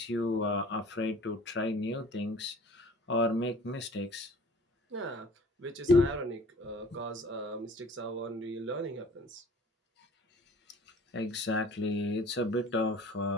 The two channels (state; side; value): normal; both; correlation 0.49